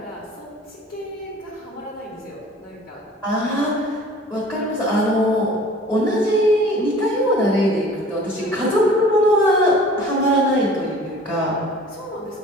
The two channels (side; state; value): both; normal; correlation 0.47